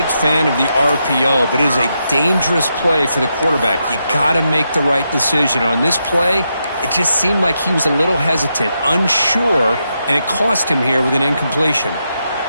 fan of the RPO, but it is a dangerous play for the quarterback. You got to make the right decision. On this play, it just seemed like he was a little hesitant, unsure, and it cost him here with an incompletion.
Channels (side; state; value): both; inverted; correlation -0.83